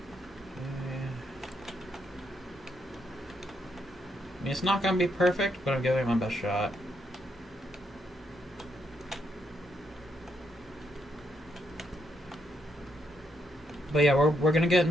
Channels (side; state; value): both; normal; correlation 0.78